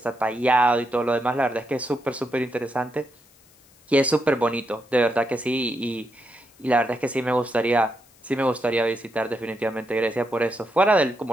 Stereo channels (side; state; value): left; noise; hiss, 29 dB below the sound